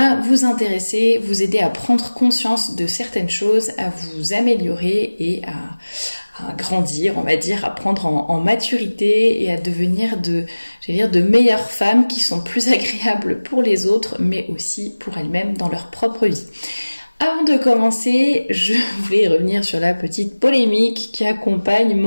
vous intéresser, vous aider à prendre conscience de certaines choses, à vous améliorer et à grandir, on va dire, à prendre en maturité et à devenir de meilleures femmes qui sont plus agréables pour les autres, mais aussi pour elles-mêmes dans leur propre vie. Avant de commencer, je voulais revenir sur la petite polémique qui accompagne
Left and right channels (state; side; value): inverted; both; correlation -1.00